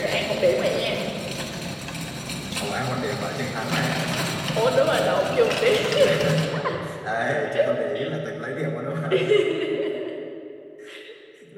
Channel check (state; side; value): identical; both; correlation 1.00